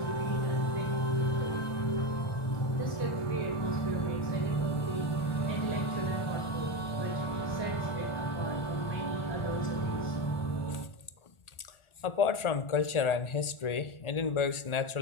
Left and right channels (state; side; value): late; right; 1.4 ms